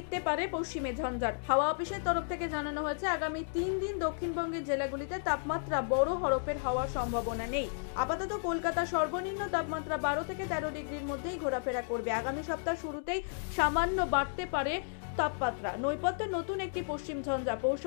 পারে পশ্চিমে ঝঞ্ঝার। হাওয়া অফিসের তরফ থেকে জানানো হয়েছে আগামী 3 দিন দক্ষিণবঙ্গের জেলাগুলিতে তাপমাত্রা বড় হরফের হওয়ার সম্ভাবনা নেই। আপাতত কলকাতা সর্বনিম্ন তাপমাত্রা 12 থেকে 13 ডিগ্রির মধ্যেই ঘোরাফেরা করবে। আগামী সপ্তাহ শুরুতেই সামান্য বাড়তে পারে তাপমাত্রা। নৈপথ্যে নতুন একটি পশ্চিম ঝঞ্ঝা। পৌষ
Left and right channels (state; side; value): silent; right; digital silence